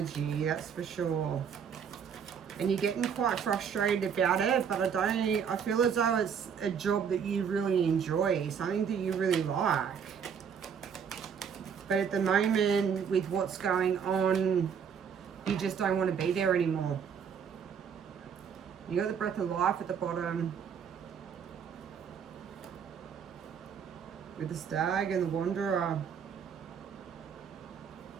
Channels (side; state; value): left; quieter; 7.2 dB